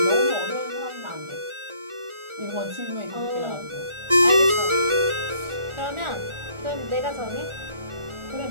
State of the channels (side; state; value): left; late; 1.4 ms